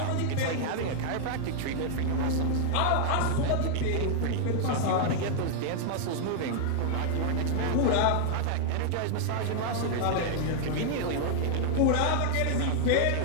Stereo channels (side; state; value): both; different; correlation 0.00